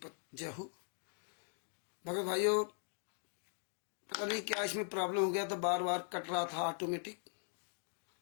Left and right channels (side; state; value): right; silent; 51 dB below the other